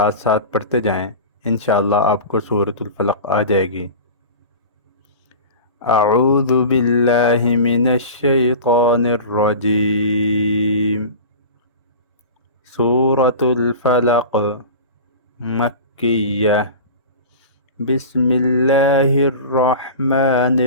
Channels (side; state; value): both; inverted; correlation -0.33